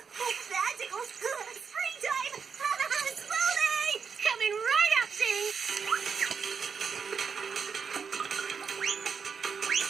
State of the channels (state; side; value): quieter; left; 6.1 dB